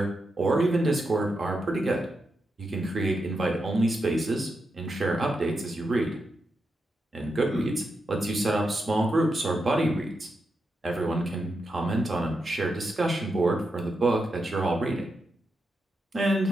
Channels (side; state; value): both; normal; correlation 0.86